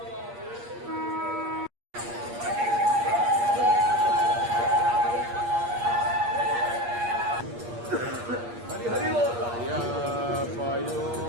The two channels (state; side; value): late; left; 8.5 ms